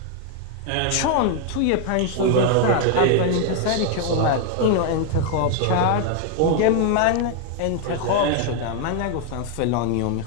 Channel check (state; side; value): different; both; correlation 0.01